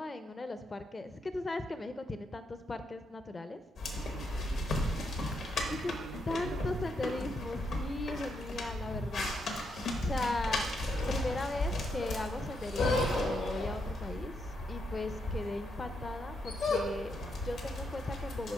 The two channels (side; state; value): both; normal; correlation 0.80